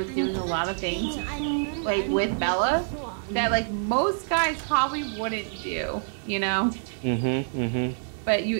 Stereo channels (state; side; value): silent; left; digital silence